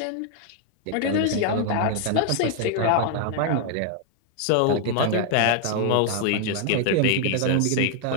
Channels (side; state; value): both; different; correlation 0.00